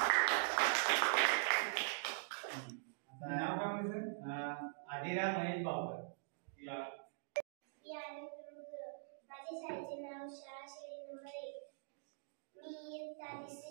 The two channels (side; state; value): left; silent; digital silence